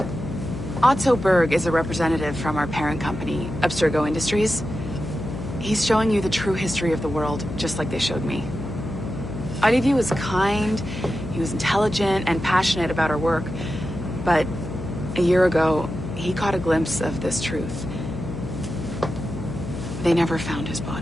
Otto Berg is a representative from our parent company, Abstergo Industries. He's showing you the true history of the world, just like they showed me. Olivier was kind, he was intelligent and passionate about our work, but a year ago, he caught a glimpse of this truth. They never found his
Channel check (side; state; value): left; noise; hum, 9 dB below the sound